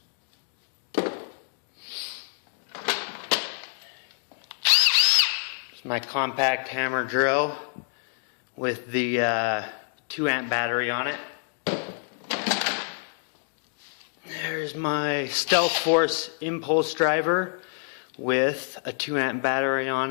It's my compact hammer drill with the 2 amp battery on it. There's my Stealth Force impulse driver with a 2 amp battery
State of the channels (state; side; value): silent; right; digital silence